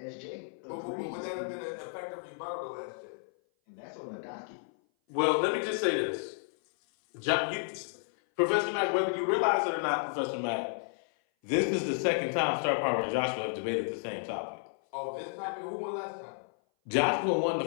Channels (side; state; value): right; silent; 56 dB below the other